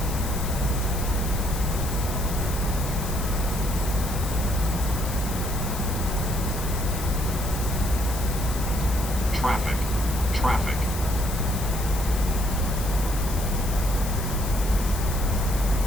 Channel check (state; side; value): noise; left; hiss, 9 dB below the sound